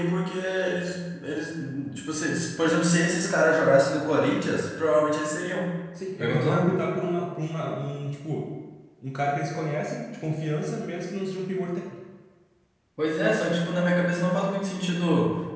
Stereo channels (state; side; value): identical; both; correlation 1.00